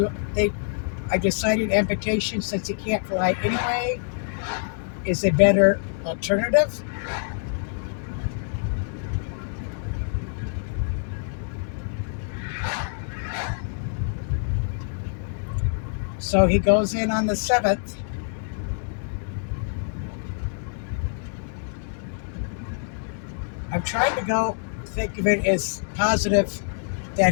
do. I decided amputation, since he can't fly anyway, is a better alternative. So he goes in on the 7th. I'm trying to think of it as positive that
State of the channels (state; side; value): silent; right; digital silence